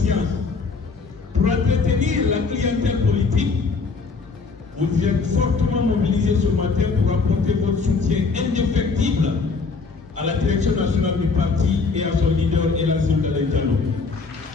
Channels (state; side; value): quieter; right; 4.5 dB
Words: pour entretenir la clientèle politique, vous êtes fortement mobilisés ce matin pour apporter votre soutien indéfectible à la direction nationale du parti et à son leader, Elassine Galaye Diallo.